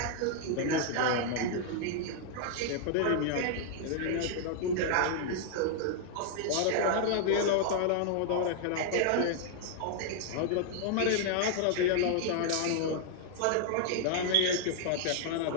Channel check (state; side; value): different; both; correlation -0.01